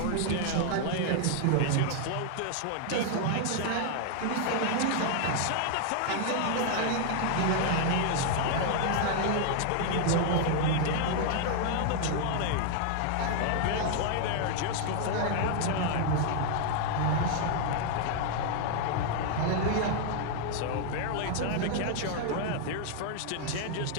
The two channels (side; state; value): both; different; correlation 0.00